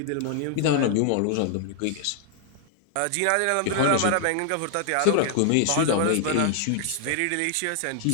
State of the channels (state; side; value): different; both; correlation 0.00